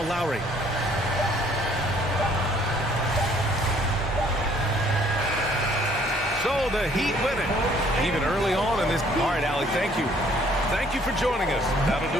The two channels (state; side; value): normal; both; correlation 0.60